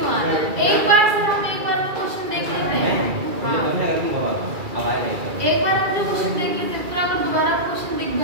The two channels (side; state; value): left; late; 2.3 ms